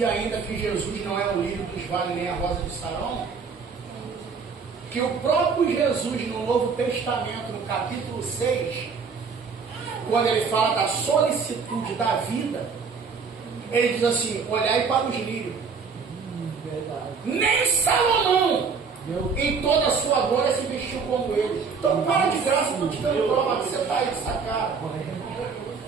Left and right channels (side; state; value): left; quieter; 5.4 dB